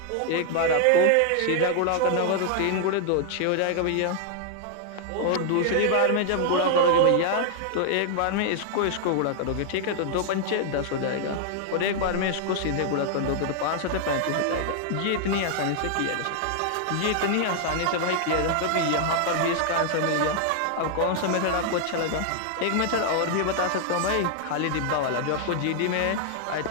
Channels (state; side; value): different; both; correlation 0.00